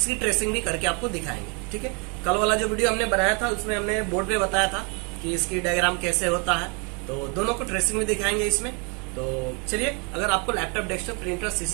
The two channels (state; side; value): quieter; left; 33.8 dB